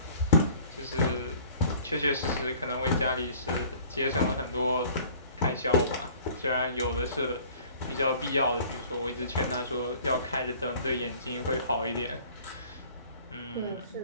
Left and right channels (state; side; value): inverted; both; correlation -0.50